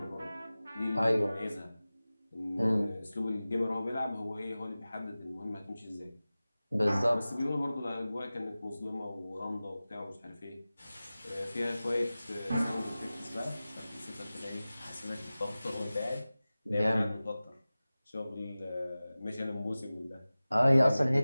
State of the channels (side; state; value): both; inverted; correlation -0.97